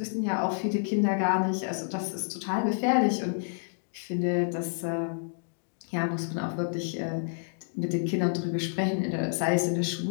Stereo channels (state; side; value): silent; right; digital silence